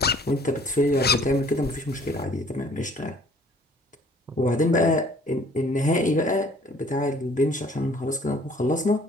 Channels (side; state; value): both; normal; correlation 0.55